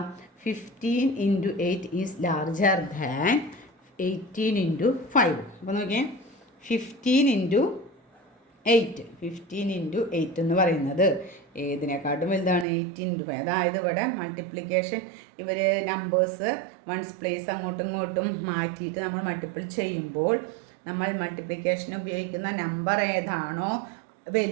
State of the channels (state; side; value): drops out; left; at 12.7 s